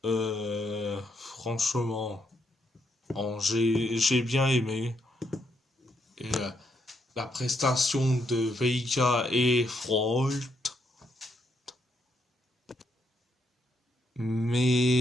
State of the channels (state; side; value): normal; both; correlation 0.77